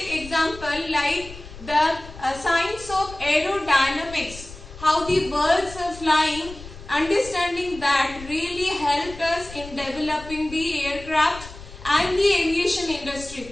example like the science of aerodynamics, how the birds are flying. Understanding that really helped us in developing the aircraft and the aviation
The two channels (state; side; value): noise; left; rumble, 16 dB below the sound